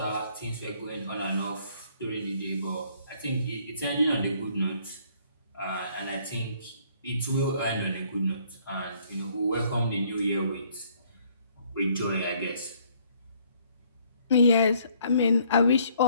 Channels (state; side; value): inverted; both; correlation -0.63